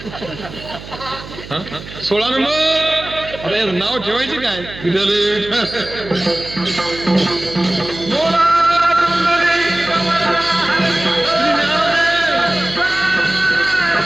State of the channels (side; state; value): right; noise; hum, 14 dB below the sound